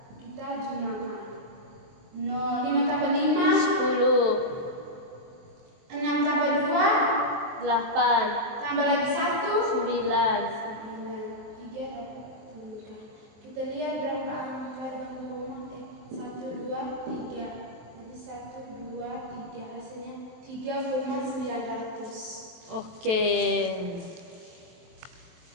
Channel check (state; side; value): late; left; 23 ms